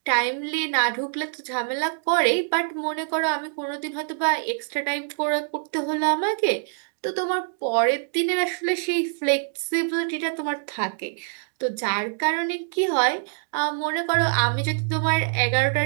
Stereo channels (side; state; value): left; silent; digital silence